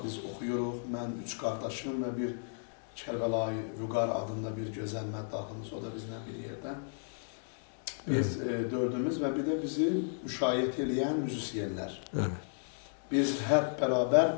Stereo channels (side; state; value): right; silent; digital silence